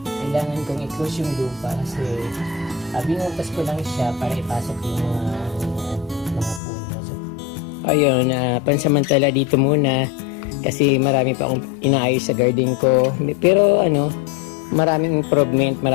kailangan kong i-close yung lupa kasi binutas ko lang siya para ipasok yung mga puno. So, ayun, pansamantala dito muna kasi marami pa akong inaayos sa garden ko. Pero maraming improvement,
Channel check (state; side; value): drops out; right; at 6.6 s